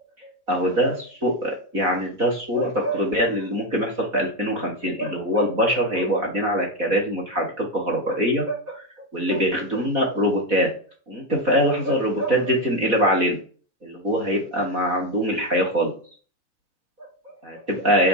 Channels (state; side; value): late; left; 4.1 ms